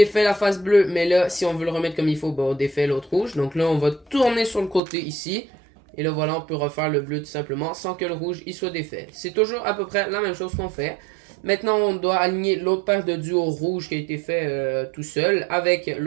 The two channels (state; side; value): drops out; left; at 4.8 s